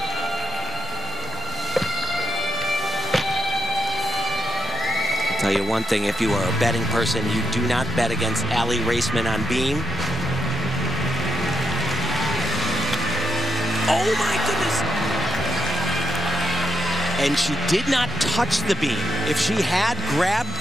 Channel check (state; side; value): normal; both; correlation 0.81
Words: Tell you one thing, if you are a betting person, you do not bet against Aly Raisman on beam. Oh my goodness. And she did not touch the beam. If she had grabbed